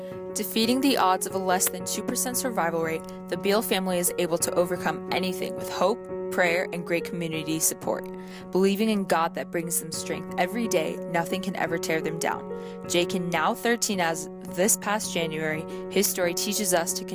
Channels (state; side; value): identical; both; correlation 1.00